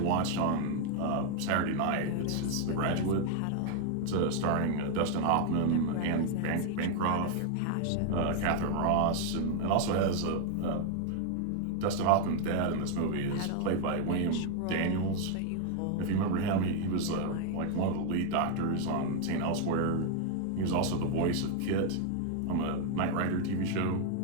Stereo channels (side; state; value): both; different; correlation 0.00